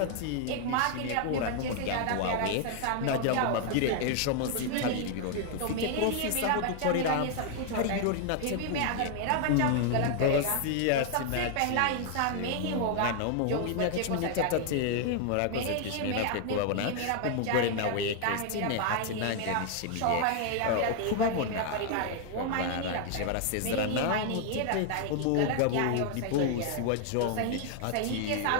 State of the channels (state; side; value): different; both; correlation 0.00